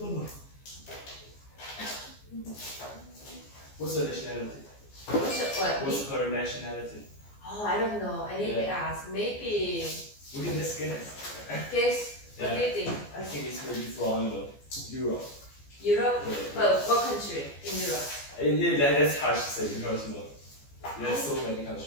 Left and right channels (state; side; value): late; right; 14 ms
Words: What's her nationality? What? What's her nationality? Oh, I don't know. I need to ask. Maybe. We can just guess. Guess. What Yeah. do you think? I think it's maybe from Europe. Europe? Yeah. Well, what country in Europe? Yeah, that's hard to say because there's so many